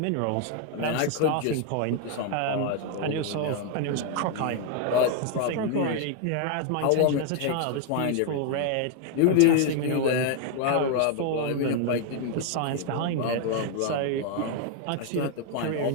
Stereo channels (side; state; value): both; different; correlation 0.00